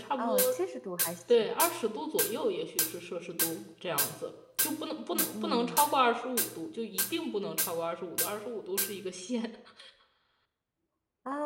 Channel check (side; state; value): both; identical; correlation 1.00